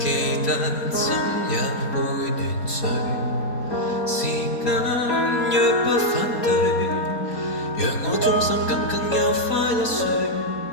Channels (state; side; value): late; right; 4.3 ms